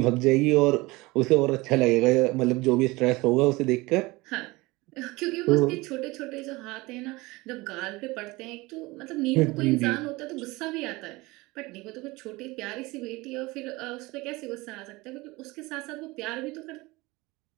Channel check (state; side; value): quieter; left; 22.2 dB